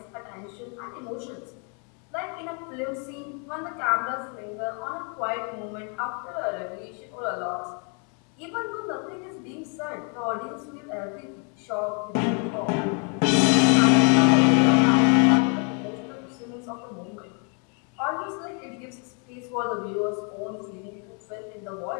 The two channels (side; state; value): right; quieter; 38.2 dB